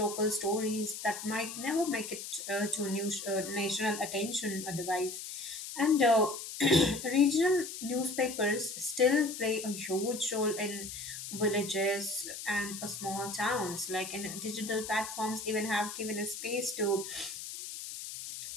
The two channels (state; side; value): noise; left; hiss, 8 dB below the sound